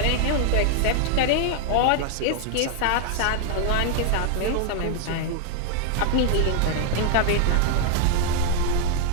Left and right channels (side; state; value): both; different; correlation 0.00